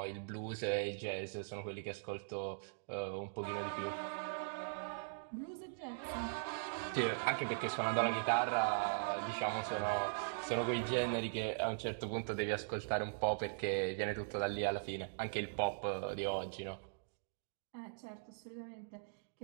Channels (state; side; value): silent; left; digital silence